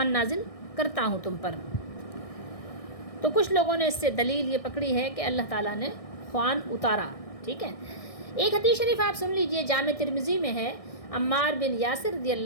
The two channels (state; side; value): late; right; 1.6 ms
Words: نازل کرتا ہوں تم پر. تو کچھ لوگوں نے اس سے دلیل یہ پکڑی ہے کہ اللہ تعالیٰ نے خوان اتارا. ٹھیک ہے، ایک حدیث شریف آپ سن لیجئے، جامع ترمذی میں ہے. عمار بن یاسر رضی